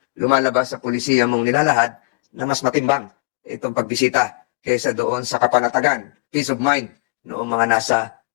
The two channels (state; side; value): quieter; right; 30.6 dB